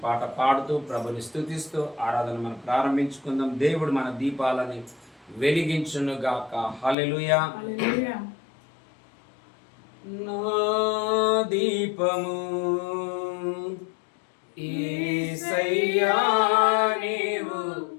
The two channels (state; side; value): drops out; right; at 7.0 s